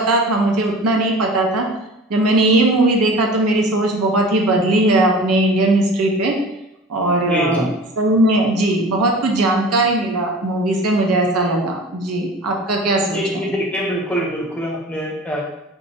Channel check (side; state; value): both; normal; correlation 0.40